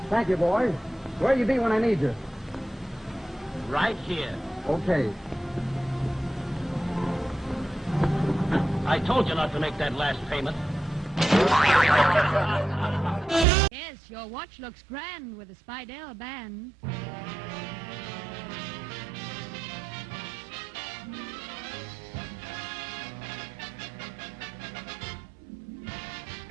Thank you, boys. Where you be when I need you? Right here. Okay. I told you not to make that last payment. Yes, your watch looks grand with a Spidell band.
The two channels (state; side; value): drops out; left; at 13.5 s